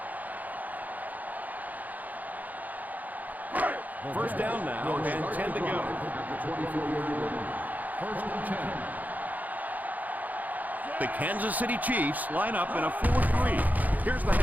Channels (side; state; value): left; late; 0.080 ms